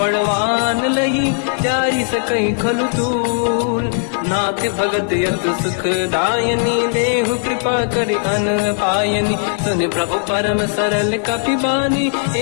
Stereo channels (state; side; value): silent; right; 68 dB below the other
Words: लही जारी सकई खलु तूल नाथ भगत यत सुख दायनी देहु कृपा करि अन पायनी सुनि प्रभु परम सरल कपि बानी